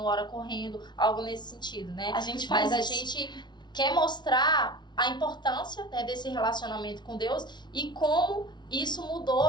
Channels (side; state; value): right; late; 0.21 ms